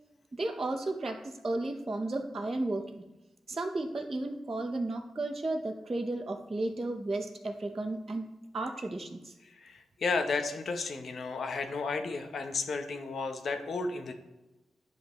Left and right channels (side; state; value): both; normal; correlation 0.86